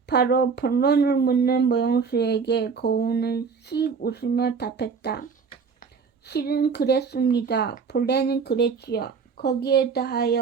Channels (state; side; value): quieter; left; 5.6 dB